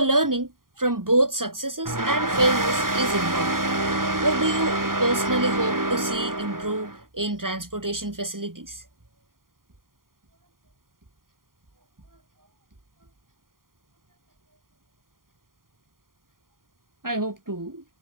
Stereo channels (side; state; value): left; late; 0.91 ms